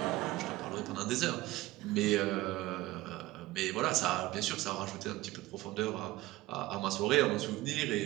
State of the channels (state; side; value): quieter; left; 17.8 dB